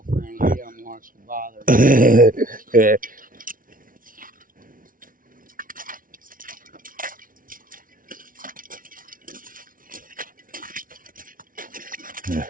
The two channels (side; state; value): left; late; 0.40 ms